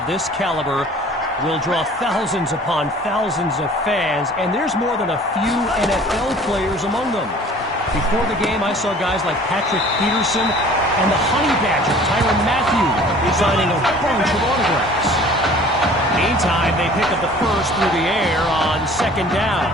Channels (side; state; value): both; normal; correlation 0.49